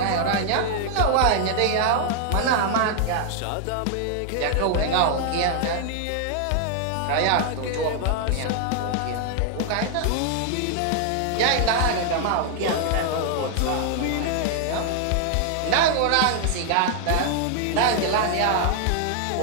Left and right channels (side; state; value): both; different; correlation 0.00